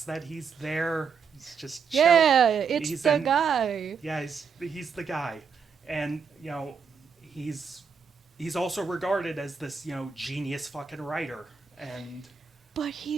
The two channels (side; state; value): left; quieter; 6.0 dB